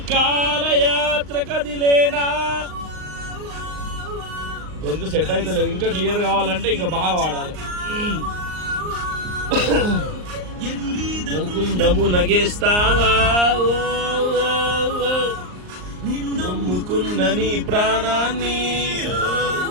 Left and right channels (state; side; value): late; left; 38 ms